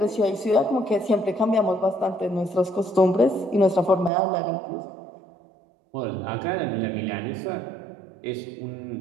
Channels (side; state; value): left; drops out; at 4.1 s